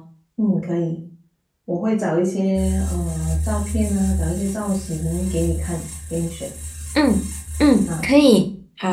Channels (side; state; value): both; identical; correlation 1.00